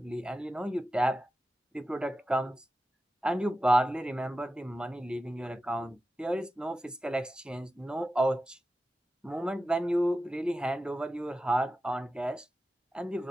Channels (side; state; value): both; normal; correlation 0.93